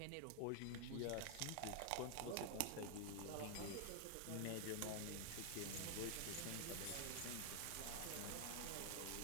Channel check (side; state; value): both; different; correlation 0.00